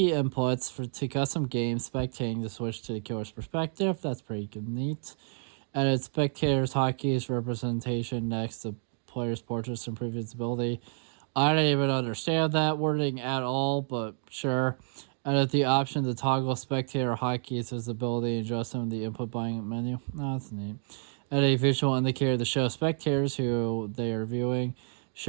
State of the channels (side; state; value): left; silent; 58 dB below the other